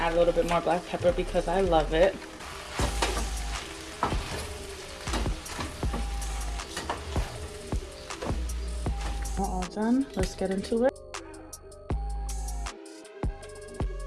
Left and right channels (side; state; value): both; identical; correlation 1.00